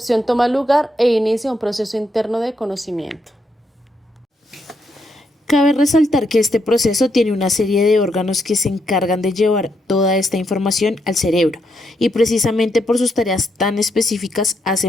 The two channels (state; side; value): normal; both; correlation 0.79